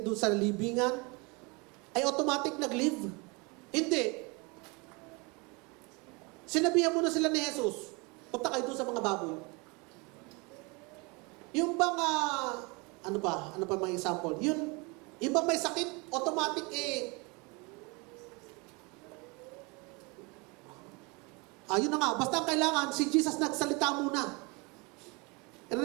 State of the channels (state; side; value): quieter; left; 28.7 dB